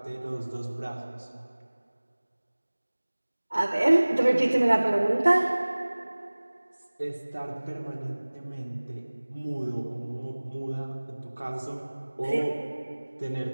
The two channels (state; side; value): inverted; both; correlation -1.00